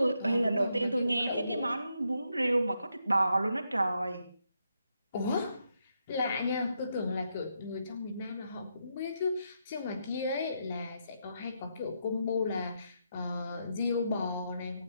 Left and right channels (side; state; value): both; inverted; correlation -0.81